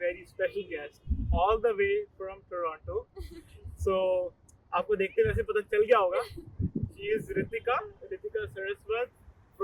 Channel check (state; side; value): identical; both; correlation 1.00